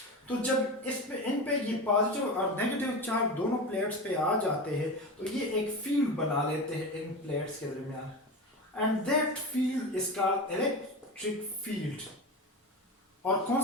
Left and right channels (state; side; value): normal; both; correlation 0.25